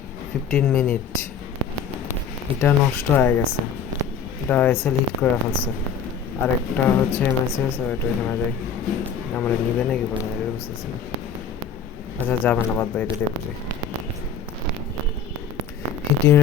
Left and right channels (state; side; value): quieter; right; 6.4 dB